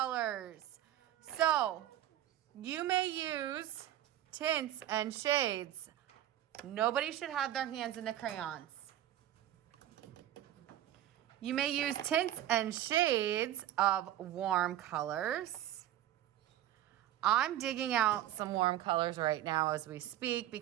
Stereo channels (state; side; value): quieter; left; 12.6 dB